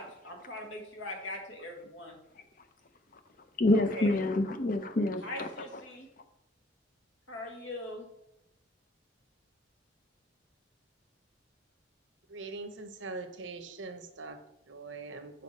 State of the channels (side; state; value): both; normal; correlation 0.59